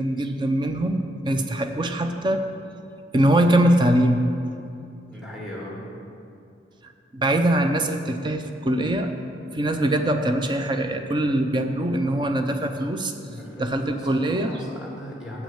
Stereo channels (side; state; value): both; normal; correlation 0.74